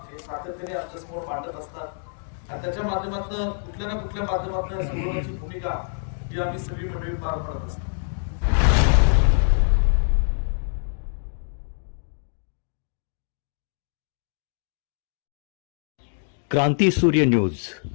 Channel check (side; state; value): right; silent; digital silence